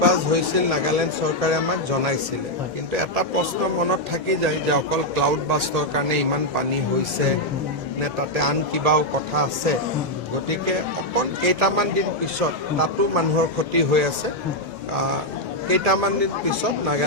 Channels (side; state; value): both; normal; correlation -0.01